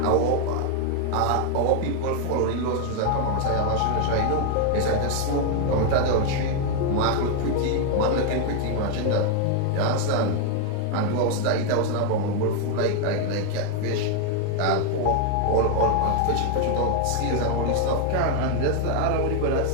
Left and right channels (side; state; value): both; different; correlation 0.00